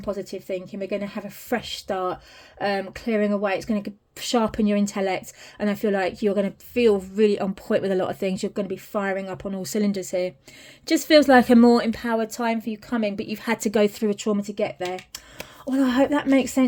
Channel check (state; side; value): identical; both; correlation 1.00